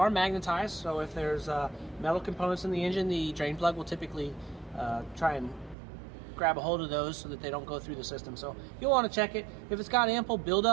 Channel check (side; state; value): left; drops out; at 5.8 s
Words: magnetized, so if there's metal components in the engine, the drain plug will typically try and grab a hold of those so that they don't go through the system. So you'll want to check it. If it's got ample